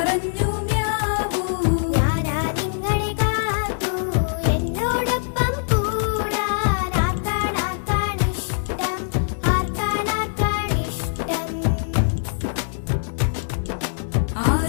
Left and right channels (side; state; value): right; silent; digital silence